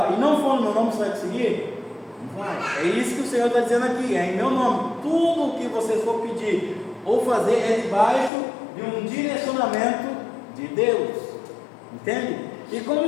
e não for no meu nome, você vai conseguir? Não vai. É isso que o Senhor está dizendo aqui: é em meu nome. Tudo o que você for pedir ou fazer é debaixo de um direcionamento de Deus. Entende? E como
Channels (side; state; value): right; drops out; at 8.3 s